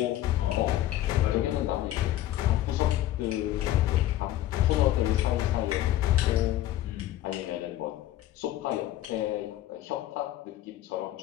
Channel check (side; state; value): right; quieter; 13.8 dB